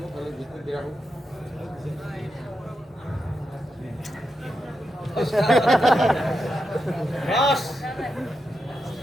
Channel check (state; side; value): normal; both; correlation 0.86